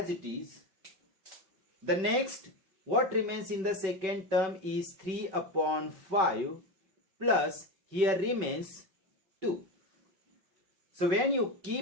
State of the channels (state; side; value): late; left; 5.3 ms